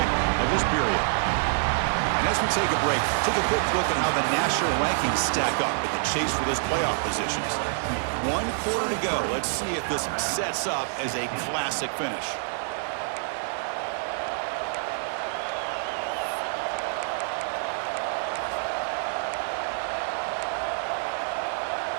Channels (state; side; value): silent; left; 60 dB below the other